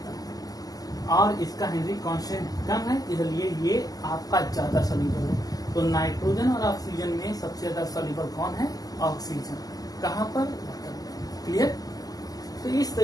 है और इसका हेनरी कांस्टेंट कम है, इसलिए ये आपका ज्यादा सोल्यूबल है। तो नाइट्रोजन और ऑक्सीजन में सबसे ज्यादा सोल्यूबल कौन है? ऑक्सीजन। कहाँ पर? क्लियर? तो इस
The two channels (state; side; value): late; right; 0.18 ms